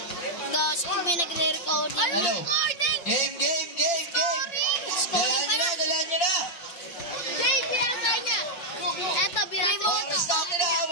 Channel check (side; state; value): right; late; 5.5 ms